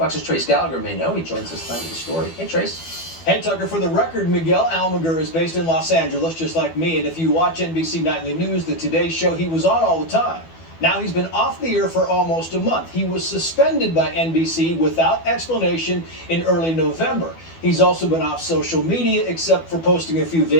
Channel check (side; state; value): right; late; 12 ms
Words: Trace Gallagher may know. He joins us tonight with the story. Hey, Trace. Hey, Tucker, for the record, Miguel Almaguer is based in Los Angeles, just like me, and if you watch NBC Nightly News, the Today Show, he was on all the time. Now he's been off the air for almost a month. He was suspended by NBC without explanation in early November. He's also been off social media except for posting a few